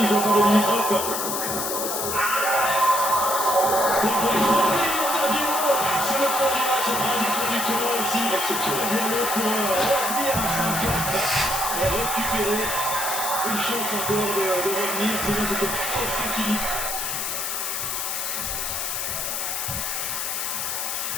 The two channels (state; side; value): noise; left; hiss, 2 dB below the sound